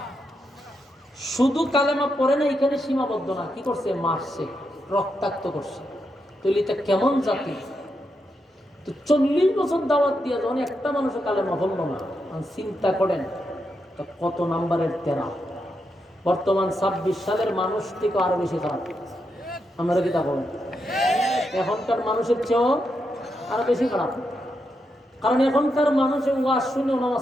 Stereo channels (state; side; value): normal; both; correlation 0.84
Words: শুধু কালেমা পড়ে না, এখানে সীমাবদ্ধ না, কি করছে? মারছে, রক্তাক্ত করছে। তাহলে এটা কেমন জাতি? তো 40 বছর দাওয়াত দিয়ে যখন একটা মানুষের কালেমা বলল না, চিন্তা করেন তো কত নাম্বারের তেরা। বর্তমান 26 সালের মানুষ থেকে আরো বেশি খারাপ। আমরা কি তা বলেন? এখনকার মানুষের চেয়েও আরো বেশি খারাপ। কারণ এখনকার মানুষের ওয়াজ শুনে